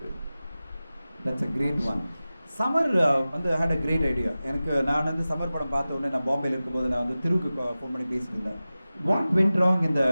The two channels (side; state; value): both; inverted; correlation -0.96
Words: it. That's a great one. Summer வந்து had a great idea. எனக்கு நான் வந்து summer படம் பார்த்த உடனே நான் பாம்பேயில் இருக்கும்போது நான் வந்து திருவுக்கு ஃபோன் பண்ணி பேசியிருந்தேன். வாட் வென்ட் ராங் இந்த